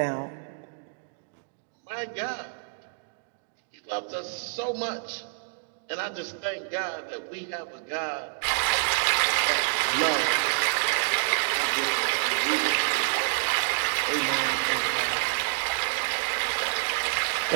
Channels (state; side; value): silent; left; digital silence